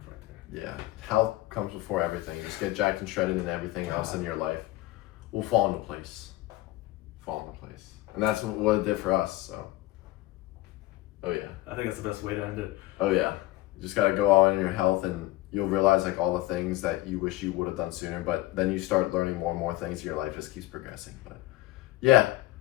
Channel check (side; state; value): right; quieter; 17.4 dB